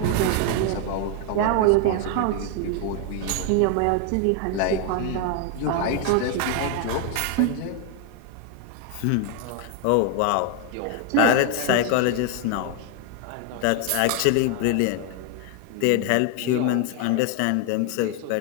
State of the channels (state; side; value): different; both; correlation 0.01